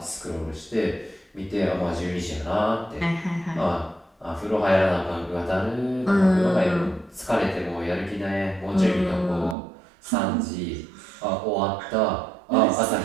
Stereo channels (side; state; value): left; drops out; at 9.6 s